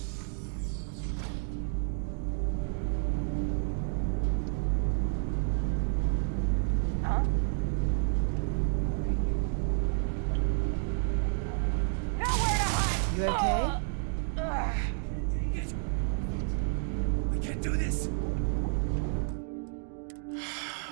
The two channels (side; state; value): left; silent; 57 dB below the other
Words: Huh? Gonna bury you. You okay? Can't take it. What was that? I can't do this.